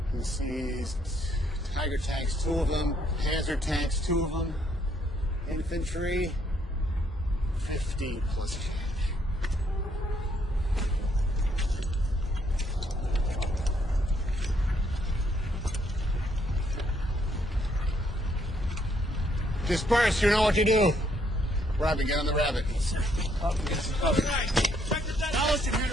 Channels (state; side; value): normal; both; correlation 0.70